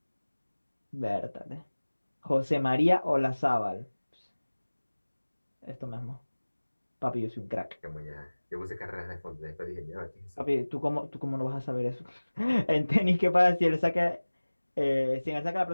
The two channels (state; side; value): inverted; both; correlation -1.00